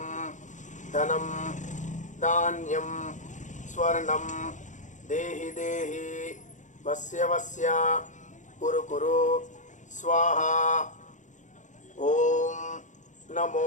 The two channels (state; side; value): late; right; 0.36 ms